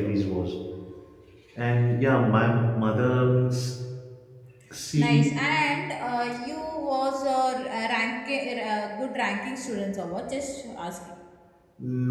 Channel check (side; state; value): both; identical; correlation 1.00